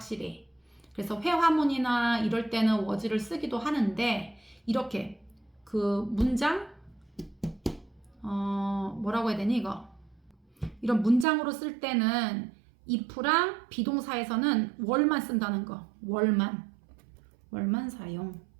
그래서 회화문이나 이럴 때는 was를 쓰기도 하는데 이렇게 그 문장 뭐라고 해야 되니 이거 이런 문장으로 쓸 때는 if랑 비동사에서는 were만 쓴다는 거. were만 사용.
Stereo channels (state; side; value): drops out; left; at 11.2 s